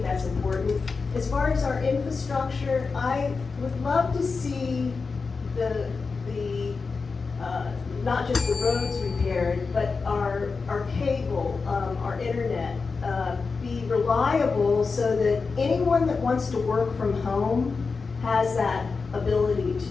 that's important. As far as our infrastructure, I would love to see not just the roads repaired, but our cable, our internet, be reliable so that anyone that wants to work from home has that ability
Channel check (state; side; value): quieter; right; 4.6 dB